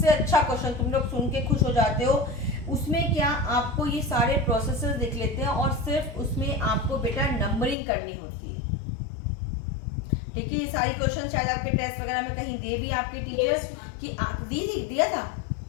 अच्छा क्वेश्चन, तुम लोग सुन के खुश हो जाते हो। उसमें क्या आपको ये सारे प्रोसेसेस दिख लेते हैं और सिर्फ उसमें आपको बेटा नंबरिंग करनी होती है, ठीक है। ये सारी क्वेश्चन शायद आपके टेस्ट वगैरह में कहीं दे भी आपके टीचर्स कि दिया था,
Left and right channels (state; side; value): drops out; right; at 7.8 s